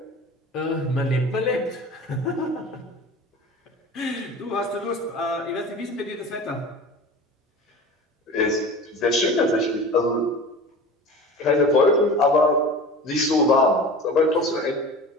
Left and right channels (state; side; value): normal; both; correlation 0.36